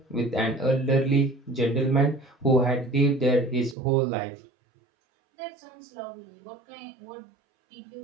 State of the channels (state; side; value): drops out; left; at 3.8 s